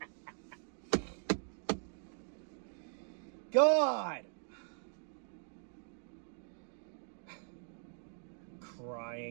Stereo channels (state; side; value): silent; left; digital silence